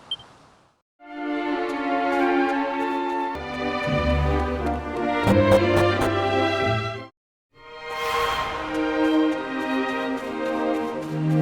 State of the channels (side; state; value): both; identical; correlation 1.00